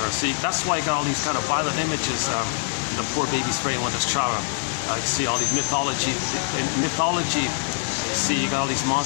her. See, that's why you got all these kind of violent images in the poor baby's brain when there's trauma. You see all these mythology. See, you got all these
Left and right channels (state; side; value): silent; right; 63 dB below the other